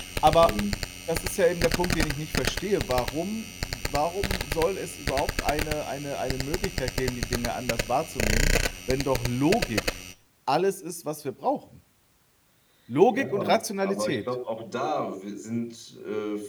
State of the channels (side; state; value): both; identical; correlation 1.00